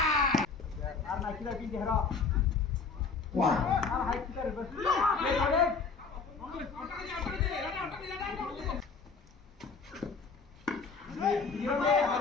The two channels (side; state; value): right; quieter; 4.9 dB